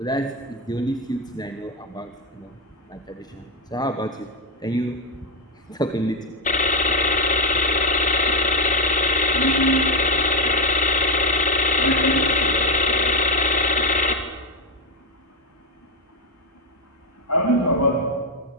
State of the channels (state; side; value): normal; both; correlation 0.06